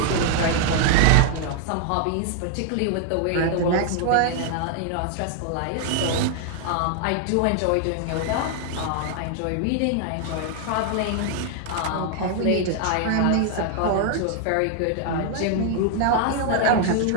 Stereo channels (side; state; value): both; different; correlation 0.00